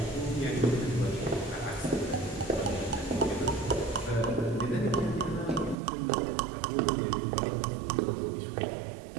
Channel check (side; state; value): left; drops out; at 5.8 s